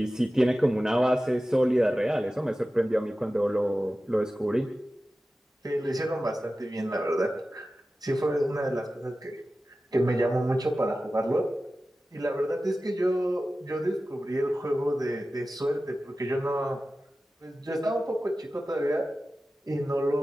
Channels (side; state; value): both; normal; correlation 0.95